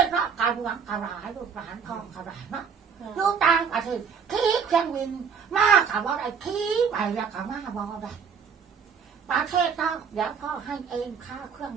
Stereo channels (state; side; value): quieter; left; 6.6 dB